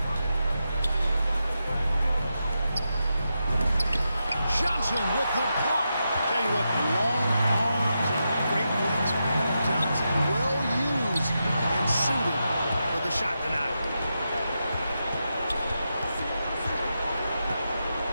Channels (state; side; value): inverted; both; correlation -0.87